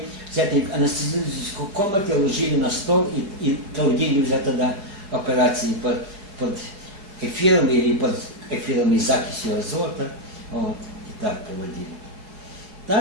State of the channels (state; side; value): late; left; 4.9 ms